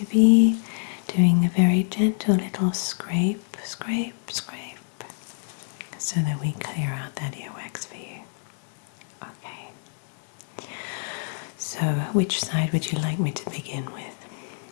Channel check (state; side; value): silent; right; digital silence